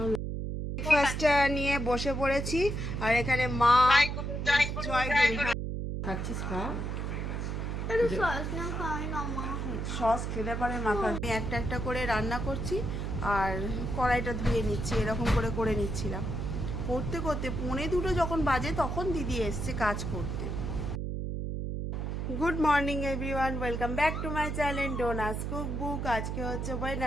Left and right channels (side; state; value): right; noise; hum, 3 dB below the sound